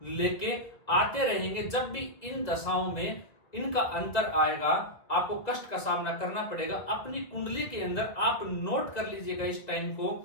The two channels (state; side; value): late; right; 1.8 ms